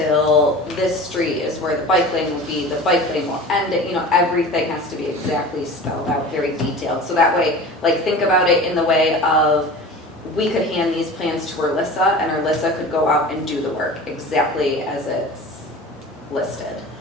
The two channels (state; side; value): normal; both; correlation 0.37